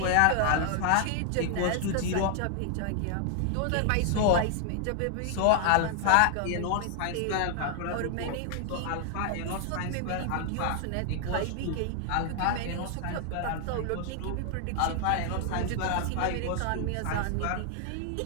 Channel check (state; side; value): different; both; correlation 0.00